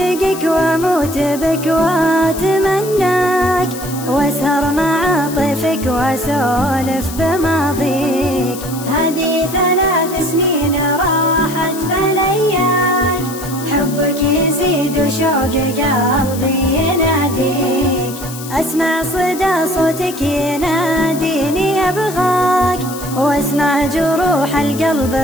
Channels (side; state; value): left; noise; hiss, 12 dB below the sound